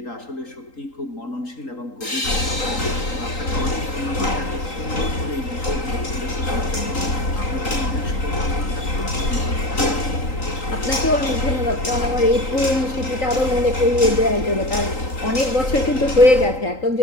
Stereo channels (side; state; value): right; late; 3.8 ms